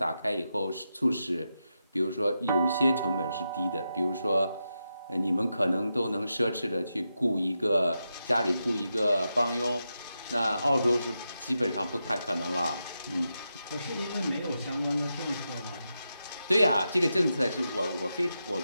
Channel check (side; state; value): both; inverted; correlation -0.87